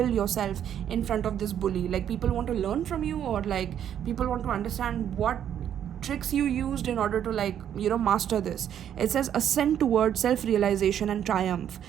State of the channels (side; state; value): left; quieter; 9.7 dB